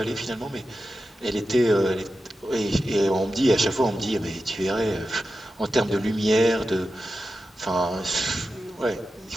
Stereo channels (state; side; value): normal; both; correlation 0.91